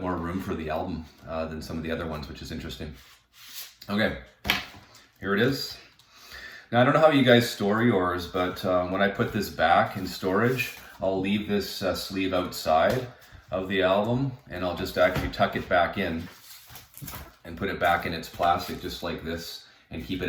more room for the album than some of the other ones, which is interesting. Okay, here it is. Now, I don't know how you guys store yours, but when I put this back in storage, I'll leave this sleeve outside of the album, and I'll just actually tuck it back in and put it back in its plastic just like this, and keep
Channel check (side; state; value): both; identical; correlation 1.00